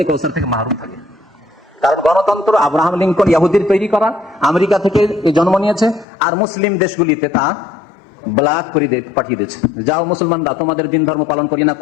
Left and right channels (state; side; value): drops out; right; at 6.1 s